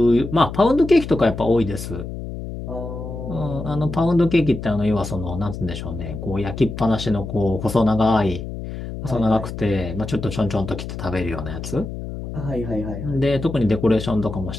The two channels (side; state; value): left; noise; hum, 8 dB below the sound